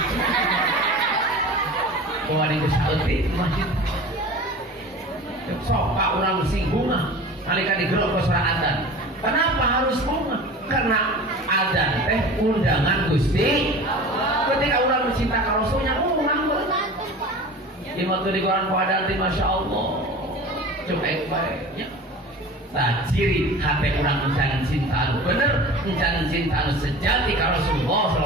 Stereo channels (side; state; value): both; normal; correlation 0.37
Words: Wah ini saeutik masjid. Sok Pak urang singgung nalika digerok ke suara adzan. Kenapa harus bunga? Karena adzan teh undangan Gusti. Ketika urang mencinta ka Rasulnya urang beunang. Imam teu digoran ku adzan teh masyaallah. Cuek bae nya. Tah ciri hate urang encan cinta anu bener, encan cinta anu sejati ka Rasulullah